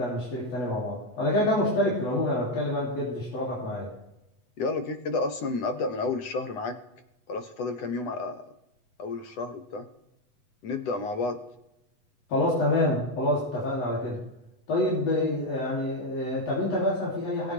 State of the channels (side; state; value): right; late; 8.1 ms